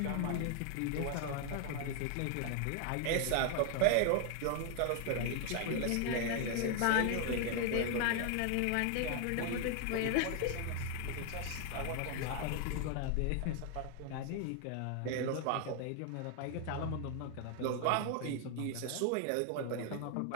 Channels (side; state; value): both; different; correlation 0.00